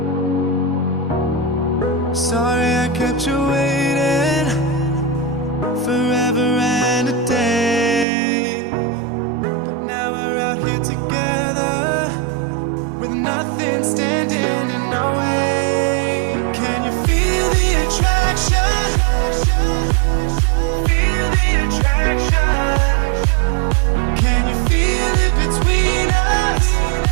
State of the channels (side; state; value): left; drops out; at 8.1 s